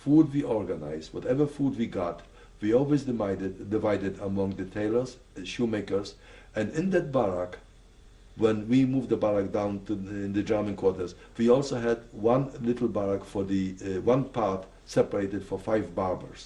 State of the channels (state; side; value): identical; both; correlation 1.00